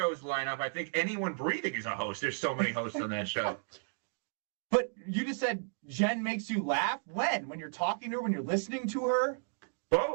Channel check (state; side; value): silent; left; digital silence